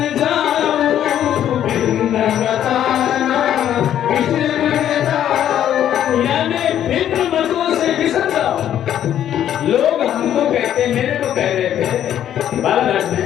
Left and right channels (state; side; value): quieter; right; 10.7 dB